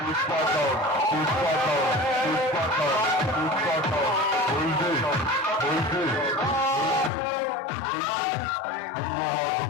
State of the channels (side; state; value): right; drops out; at 7.1 s